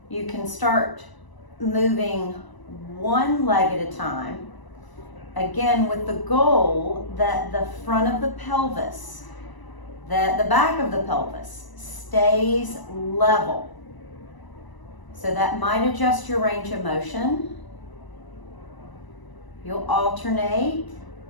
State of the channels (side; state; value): right; late; 1.0 ms